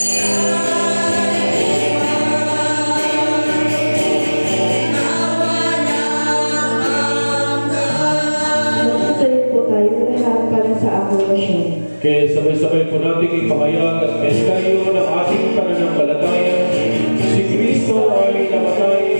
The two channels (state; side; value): inverted; both; correlation -1.00